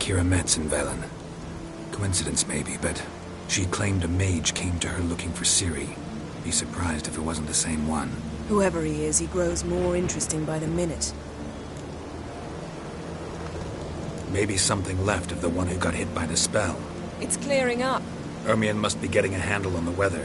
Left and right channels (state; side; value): identical; both; correlation 1.00